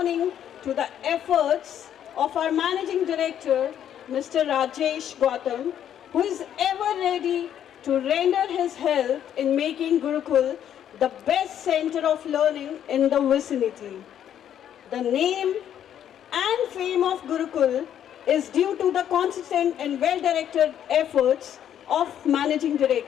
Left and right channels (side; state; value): right; quieter; 10.0 dB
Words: to the efforts of our managing director, Mr. Rajesh Gautam, who is ever ready to render his help in making Gurukul the best center of learning in the vicinity. The name and fame of Gurukul is due to the consistent and well-directed efforts of managing